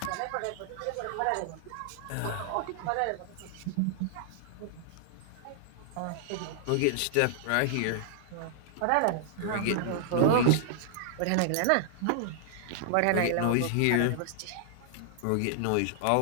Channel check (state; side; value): different; both; correlation -0.01